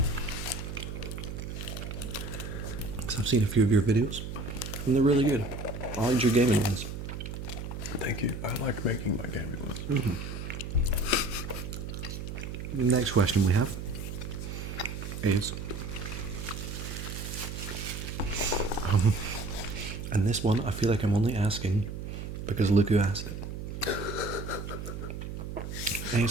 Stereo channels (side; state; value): right; noise; hum, 7 dB below the sound